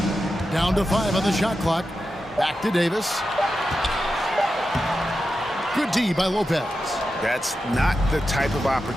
Down to 5 on the shot clock. Back to Davis. Good D by Lopez. That's not the type of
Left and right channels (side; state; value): both; normal; correlation 0.90